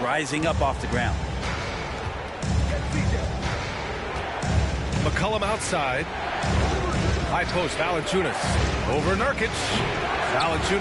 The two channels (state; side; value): identical; both; correlation 1.00